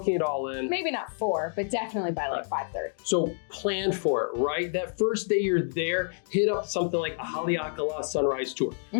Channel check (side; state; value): right; silent; digital silence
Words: it all in. Maybe not 4, but definitely by like 5:30. So plan for it, right? That first day you're there, hit up something like a Haleakala sunrise tour,